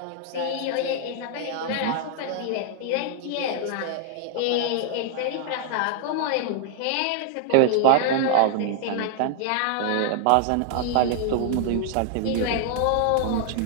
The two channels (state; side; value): different; both; correlation 0.00